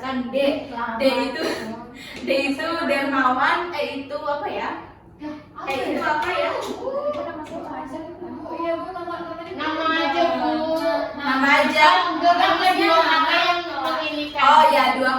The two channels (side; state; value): both; identical; correlation 1.00